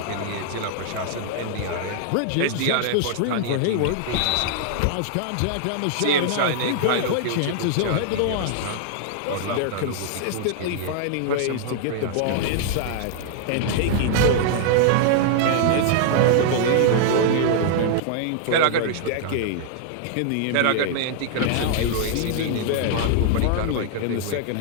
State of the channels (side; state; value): both; different; correlation -0.01